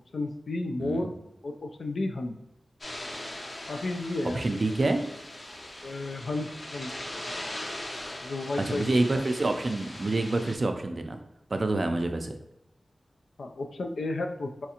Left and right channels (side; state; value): both; normal; correlation 0.94